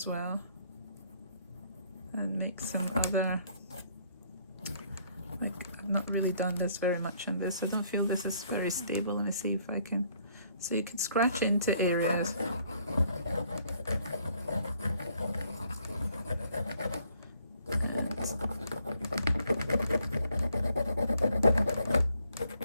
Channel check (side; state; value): both; inverted; correlation -0.66